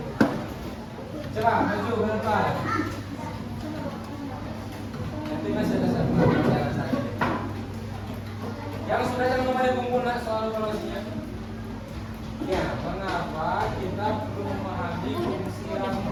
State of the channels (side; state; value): both; identical; correlation 1.00